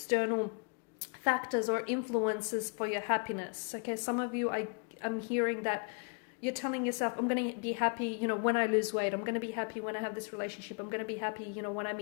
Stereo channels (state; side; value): quieter; right; 38.7 dB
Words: factors or influences for your happiness. Okay, some of you, I'm hearing that you're telling yourself, I'm going to be happy, you know, when I lose weight. I'm going to be happy when I have this relationship. I'm going to be happy, you know, when I